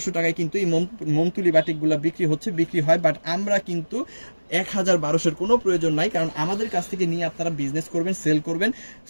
টাকায় কিন্তু এই মোমতুলি বাটিকগুলো বিক্রি হয়, বাট আমরা কিন্তু 1200-এর কোনো প্রয়োজন নাই, কারণ আমাদের কাছ থেকে নিয়ে আপনারা বিজনেস করবেন, সেল করবেন।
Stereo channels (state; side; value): inverted; both; correlation -1.00